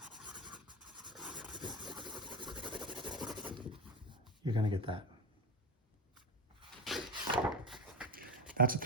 you're going to get that. That's a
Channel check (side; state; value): both; normal; correlation 0.20